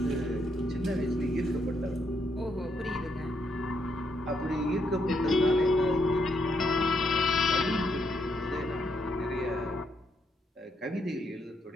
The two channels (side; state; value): both; normal; correlation 0.77